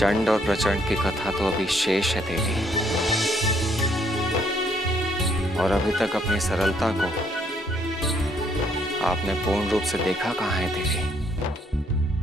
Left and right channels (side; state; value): both; normal; correlation 0.68